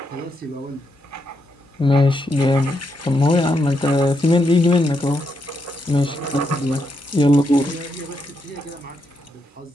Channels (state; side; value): normal; both; correlation 0.81